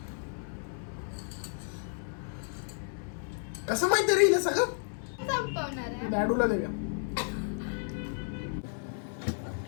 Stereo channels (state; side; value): silent; right; 56 dB below the other